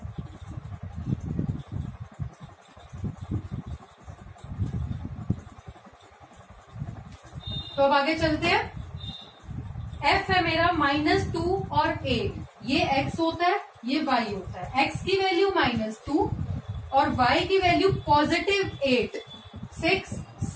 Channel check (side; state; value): both; identical; correlation 1.00